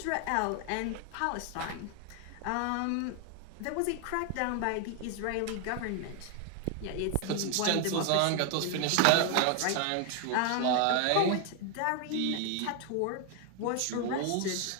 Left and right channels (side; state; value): both; different; correlation 0.01